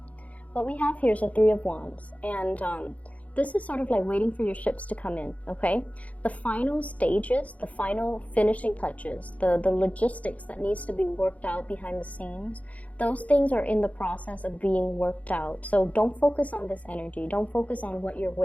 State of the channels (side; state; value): right; late; 0.069 ms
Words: What we have here is a Three of Wands, and this is sort of like waiting for your ships to come in, okay? The final stages, the final finishing touches, the logistics that needs to be worked out behind the scenes, those things are in the process of being worked out. So don't focus on this energy. Don't focus on what you're